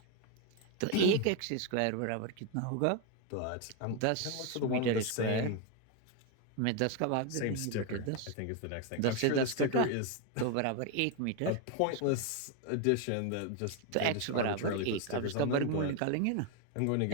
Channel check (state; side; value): different; both; correlation 0.01